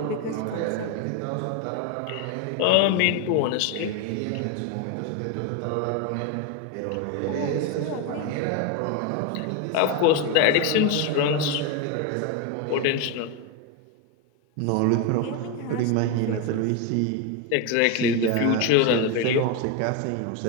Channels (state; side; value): different; both; correlation 0.02